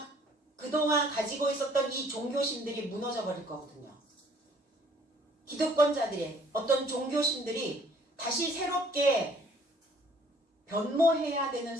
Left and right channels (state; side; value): normal; both; correlation 0.58